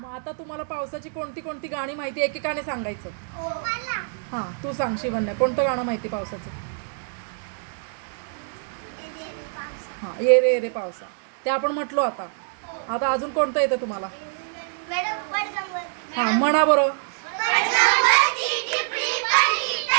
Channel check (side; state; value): left; silent; digital silence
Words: आता तुम्हाला पावसाची कोणती कोणती गाणी माहिती एकेकाने सांगायचं? हा, तू सांग शिवन्या, कोणतं गाणं माहिती पावसाचं? हा, ये रे ये रे पावसा, ते आपण म्हटलो. आता आता अजून कोणतं येतं तुम्हाला? हा, म्हणा बरोबर.